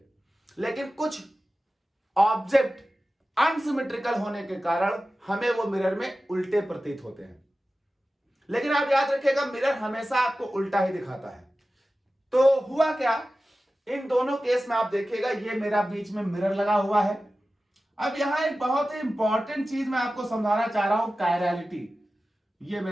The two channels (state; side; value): normal; both; correlation 0.95